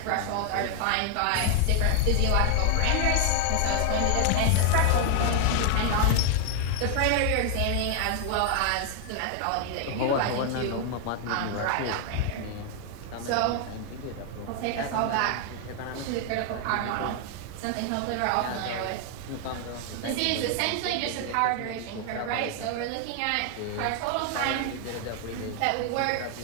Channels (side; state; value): both; different; correlation 0.00